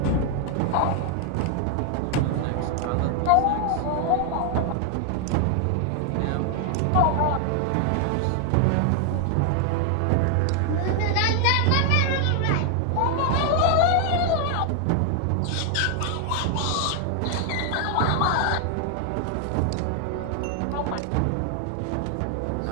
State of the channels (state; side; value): different; both; correlation 0.00